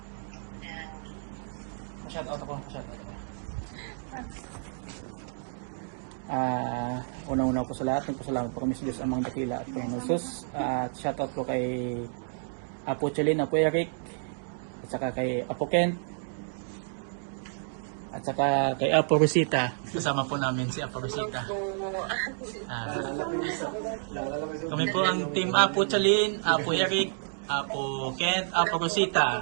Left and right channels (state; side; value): silent; left; digital silence